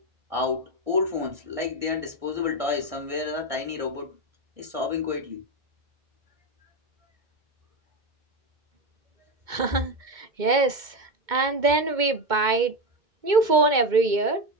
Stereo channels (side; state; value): left; late; 2.2 ms